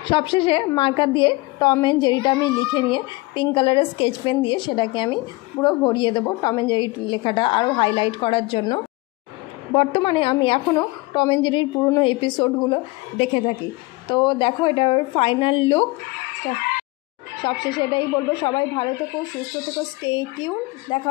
সবশেষে মার্কার দিয়ে টম অ্যান্ড জেরিটা আমি লিখে নিয়ে পিঙ্ক কালারের স্কেচ পেন দিয়ে সেটাকে আমি পুরো ভরিয়ে দেবো টম অ্যান্ড জেরি লেখাটা আরও হাইলাইট করার জন্য। বর্তমানে আমি এখনও টম অ্যান্ড জেরির পুরনো এপিসোডগুলো দেখে থাকি। তো দেখো এটার ফাইনাল লুক। সবশেষে এটাই বলবো, সবাই ভালো থেকো, সুস্থ থেকো, স্টে টিউন। দেখা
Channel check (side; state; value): right; quieter; 23.0 dB